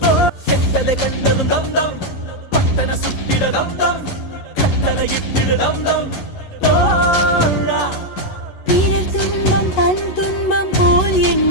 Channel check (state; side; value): late; right; 11 ms